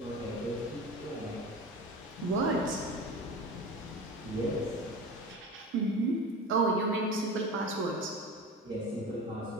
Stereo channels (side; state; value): both; normal; correlation 0.31